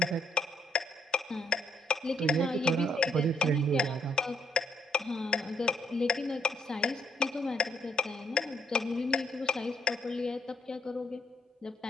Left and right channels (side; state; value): both; normal; correlation 0.72